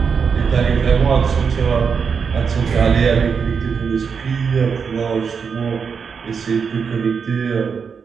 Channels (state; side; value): quieter; left; 6.0 dB